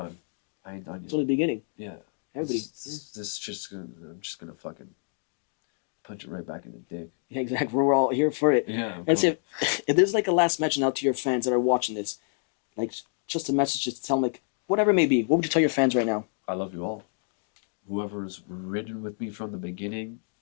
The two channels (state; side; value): silent; right; 58 dB below the other